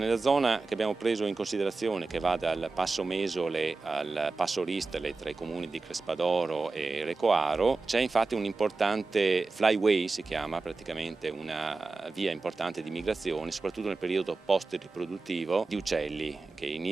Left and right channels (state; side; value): quieter; left; 3.8 dB